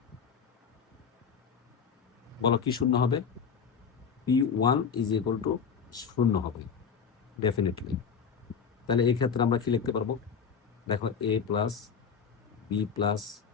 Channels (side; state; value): right; quieter; 6.5 dB